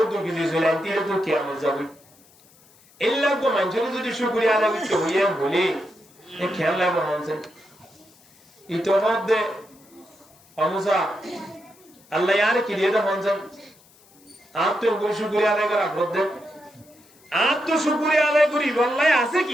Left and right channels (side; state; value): left; noise; hiss, 28 dB below the sound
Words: দুঃখী দিয়েছিল তিলে তো কেমন যাবো এই লাগবো মানুষের যদি শুকরিয়া আদায় করতে হইয়া বলি খেয়াল লাগবে মানছে ইতোমধ্যে অমুসা আল্লাহ আর কি দিয়ে মানছে আর তো শুকরিয়া আদায় করা বদ্ধ আর তো শুকরিয়া আদায় করি বললাই আছে